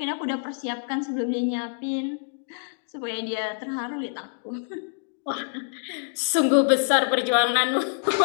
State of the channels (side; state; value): right; silent; digital silence